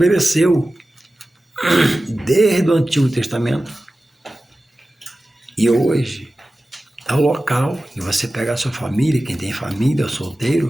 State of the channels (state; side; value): normal; both; correlation 0.95